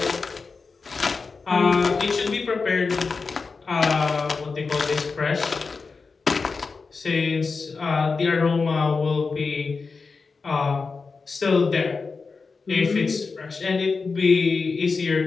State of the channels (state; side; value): quieter; right; 4.5 dB